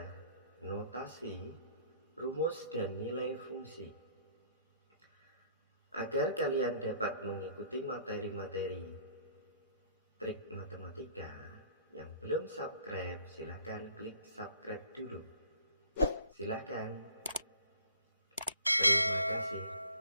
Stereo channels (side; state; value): both; inverted; correlation -0.57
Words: notasi, rumus, dan nilai fungsi. Agar kalian dapat mengikuti materi-materi trik matematika, yang belum subscribe silahkan klik subscribe dulu. Silahkan. Terima kasih.